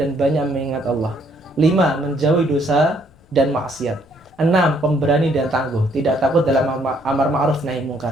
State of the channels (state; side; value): noise; left; rumble, 29 dB below the sound